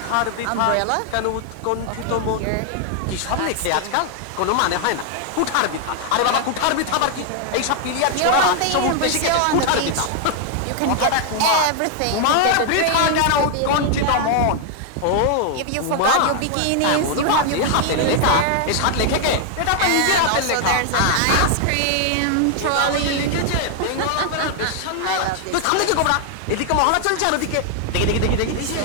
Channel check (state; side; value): different; both; correlation 0.00